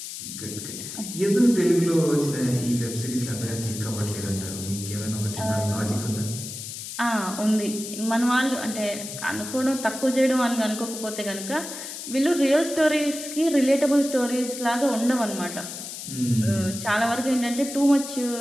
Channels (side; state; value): left; noise; hiss, 9 dB below the sound